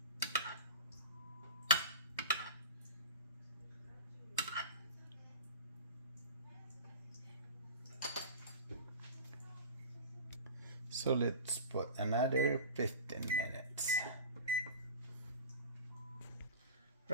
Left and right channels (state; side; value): inverted; both; correlation -0.33